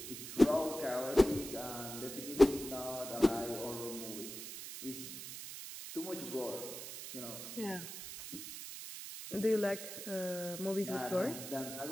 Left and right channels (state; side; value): noise; right; hiss, 9 dB below the sound